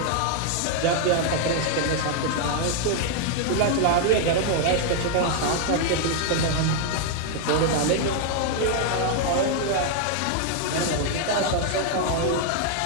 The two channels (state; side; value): different; both; correlation 0.00